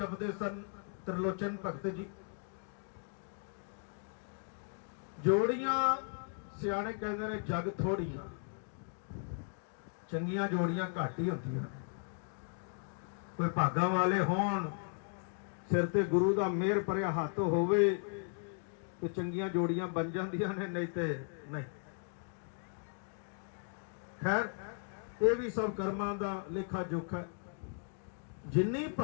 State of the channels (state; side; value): silent; right; 53 dB below the other